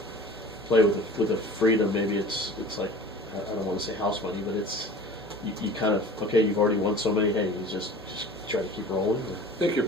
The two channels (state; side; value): noise; right; hum, 21 dB below the sound